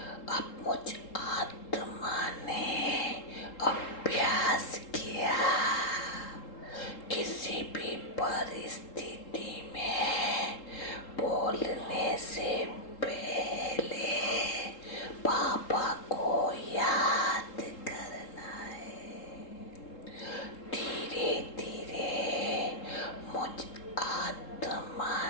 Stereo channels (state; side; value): late; right; 3.7 ms